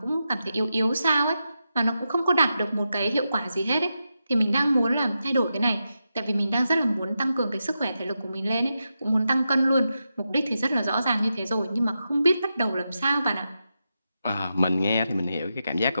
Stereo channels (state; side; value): inverted; both; correlation -0.88